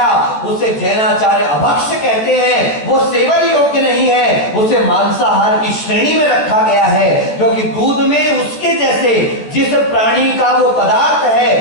उसे जैनाचार्य अभक्ष कहते हैं, वो सेवन योग्य नहीं है, उसे मांसाहार की श्रेणी में रखा गया है। क्योंकि दूध में उसके जैसे जिस प्राणी का वो पदार्थ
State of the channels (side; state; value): right; late; 14 ms